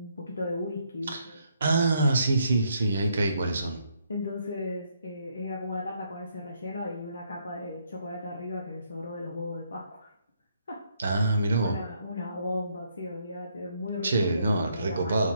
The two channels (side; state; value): both; inverted; correlation -0.72